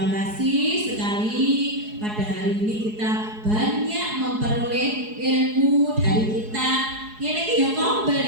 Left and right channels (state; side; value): late; left; 4.7 ms